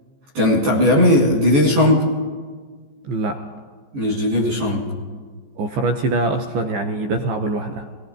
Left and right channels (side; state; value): left; late; 15 ms